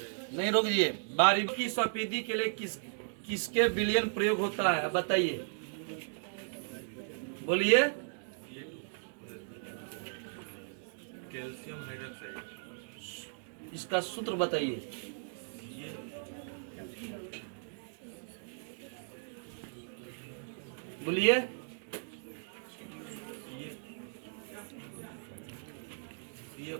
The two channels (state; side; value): silent; left; digital silence